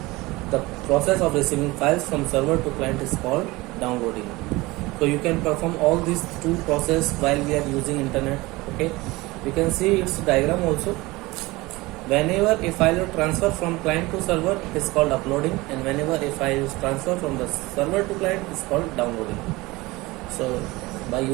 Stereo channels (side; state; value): left; quieter; 21.4 dB